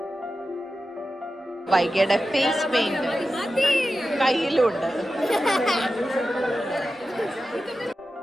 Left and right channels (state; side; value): normal; both; correlation 0.92